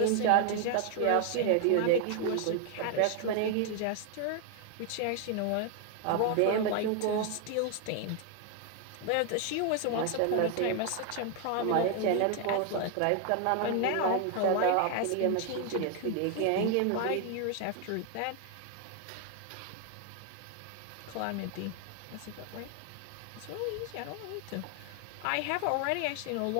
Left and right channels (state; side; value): different; both; correlation 0.00